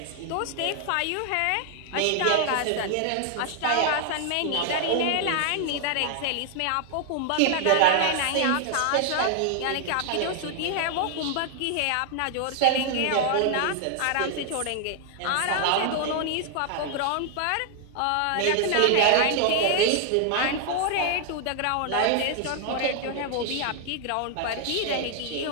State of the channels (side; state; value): both; different; correlation 0.00